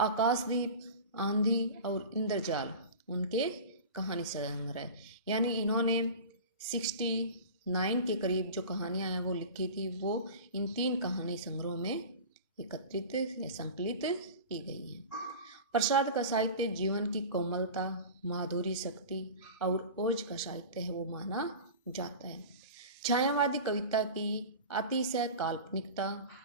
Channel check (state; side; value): inverted; both; correlation -0.34